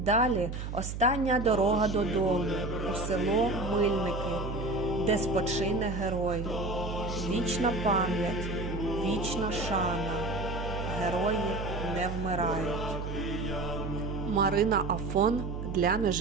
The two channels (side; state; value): right; noise; hum, 6 dB below the sound